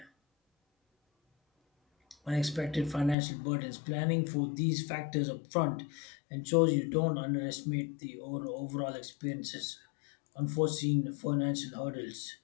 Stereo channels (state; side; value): drops out; right; at 3.2 s